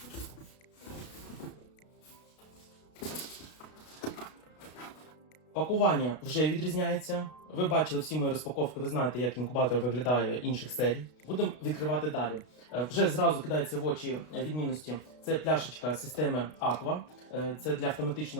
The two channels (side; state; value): right; late; 32 ms